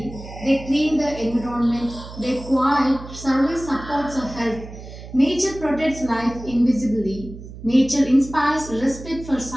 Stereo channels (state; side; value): noise; right; hum, 14 dB below the sound